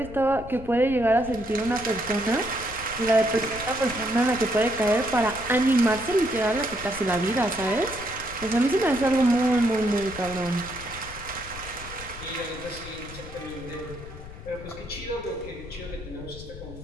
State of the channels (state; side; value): noise; left; rumble, 14 dB below the sound